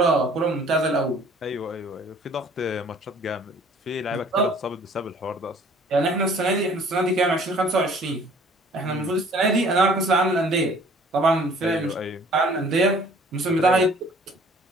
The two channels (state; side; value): normal; both; correlation 0.54